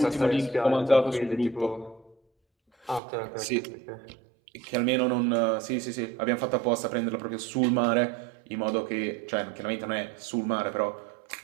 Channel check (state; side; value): drops out; left; at 3.0 s